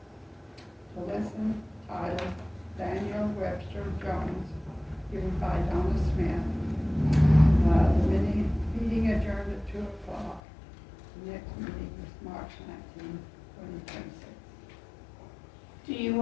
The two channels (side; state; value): right; drops out; at 10.4 s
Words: listen, title, Daniel Webster Jones, given by Donna Smith. The meeting adjourned at 2 o'clock. The next meeting is March 19, 2026. Do you